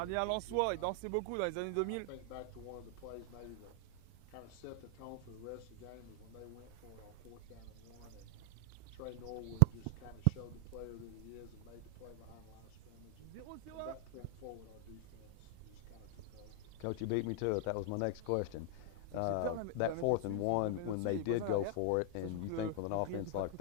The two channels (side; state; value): both; different; correlation 0.00